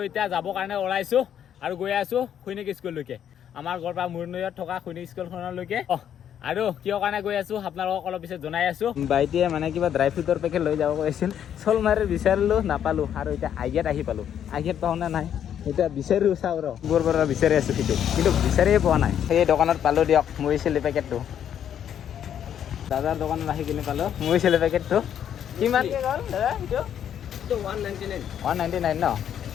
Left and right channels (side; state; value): right; quieter; 9.5 dB